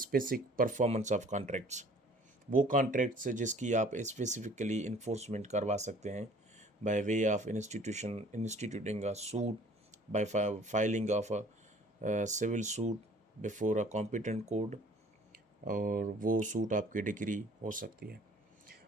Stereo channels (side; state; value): both; normal; correlation 0.53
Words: performance of contracts. वो कॉन्ट्रैक्ट्स जिसकी आप स्पेसिफिकली इन्फोर्समेंट करवा सकते हैं by way of instituting a suit, by filing of a civil suit before a competent court, और वो सूट आपकी डिग्री हो सकती है।